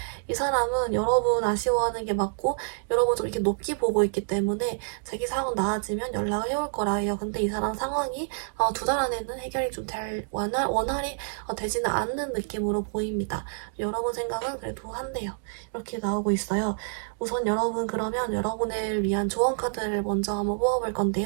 이 사람은 여러분 아쉬워하는 게 맞고, 여러분 좀 이렇게 높게 보고 있기 때문에 자기 상황 나아지면 연락을 해올 거라 해요. 근데 이 사람 상황이 2달 안에는 해결이 좀 원활히 되지는 않는 느낌으로 보입니다. 여러분 생각은 그래도 한대요. 이렇게 나오고 있어요. 우선 여러분 그러면 여러분을 위한 조언 카드를 먼저 한번 뽑아볼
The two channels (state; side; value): silent; left; digital silence